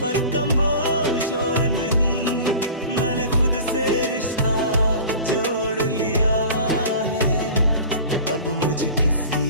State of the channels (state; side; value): inverted; both; correlation -0.39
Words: पर कमबोश और नहीं। मैंने खुद से रिश्ता जोड़ लिया है, अब मुझे किसी